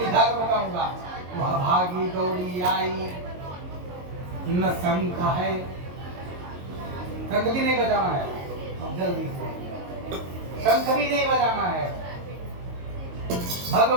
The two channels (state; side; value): late; left; 22 ms